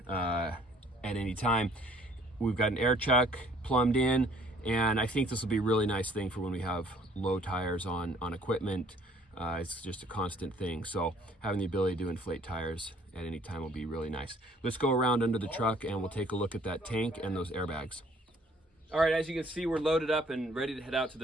at any time. We've got an air chuck plumbed in, and I think this will be a really nice thing for when we have low tires on equipment. It's just a constant thing, so having the ability to inflate tires at any time will be really nice. Let's go around under the truck and we'll take a look at that tank and those airbags. All right, as you can see, we're loaded up and ready to head out to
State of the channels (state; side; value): normal; both; correlation 0.59